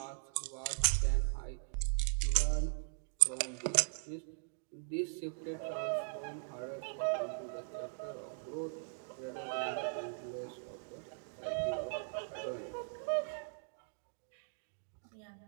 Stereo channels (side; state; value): left; silent; digital silence